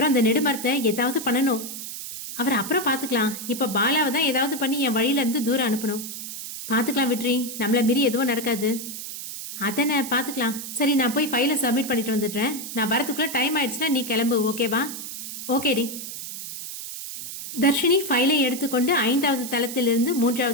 அந்த நெடுமரத்தை ஏதாவது பண்ணணும். அவர் அப்புறம் பார்த்துக்கலாம். இப்ப பாலாவை தான் ஏதாவது பண்ணி என் வழியில இருந்து தூரம் அனுப்பணும். பார்த்துக்கலாம் விட்ரி, நம்மள மீறி எதுவும் நடக்காது. அதனை பார்த்துக்கலாம். சரி, நான் போய் ஃபைலை சப்மிட் பண்ணிட்டு வந்துடுறேன். நான் வரதுக்குள்ள டைம் ஆயிடுச்சுன்னா நீ கிளம்பு, ஓகேவா? ஓகேடி. தர்ஷினி ஃபைலை எடுத்துக்கொண்டு 5வது தளத்திலிருந்து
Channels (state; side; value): noise; right; hiss, 8 dB below the sound